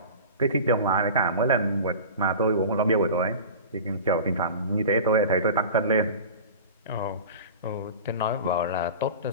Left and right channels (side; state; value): both; inverted; correlation -0.35